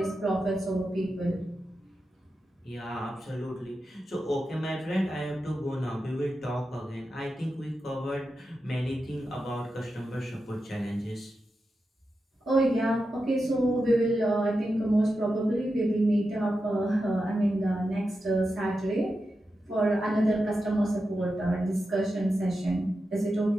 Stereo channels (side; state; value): both; normal; correlation 0.90